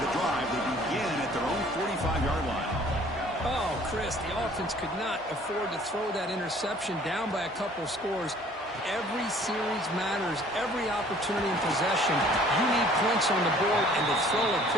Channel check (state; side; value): normal; both; correlation 0.54